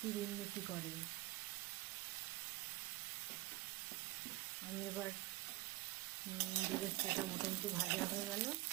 উন্নতি করে। আমি এবার বেরেস্তাটা মোটামুটি ভাজা হয়ে গেল,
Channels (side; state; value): left; quieter; 19.0 dB